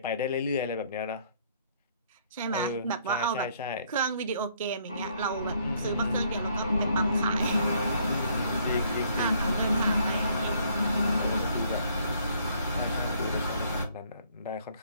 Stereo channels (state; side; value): inverted; both; correlation -0.65